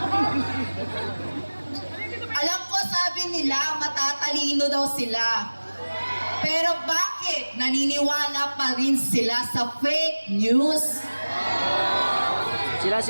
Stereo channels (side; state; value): both; inverted; correlation -1.00